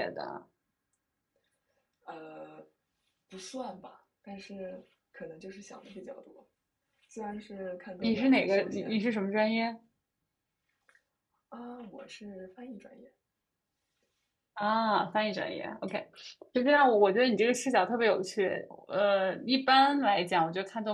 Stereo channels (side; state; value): both; identical; correlation 1.00